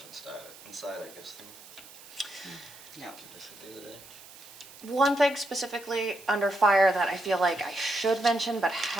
inside, I guess, Yeah. the other day. One thing specifically under fire that I feel like I should mention but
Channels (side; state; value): right; noise; hiss, 19 dB below the sound